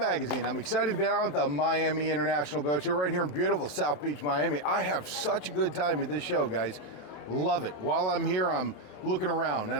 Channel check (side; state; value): right; late; 28 ms